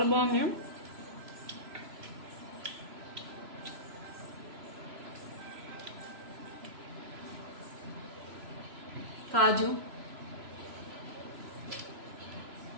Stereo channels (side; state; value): left; late; 3.0 ms